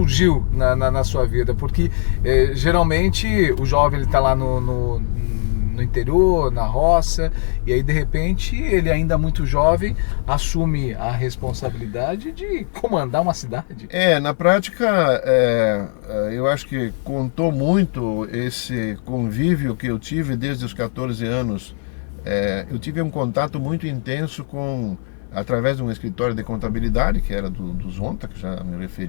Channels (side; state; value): right; silent; 66 dB below the other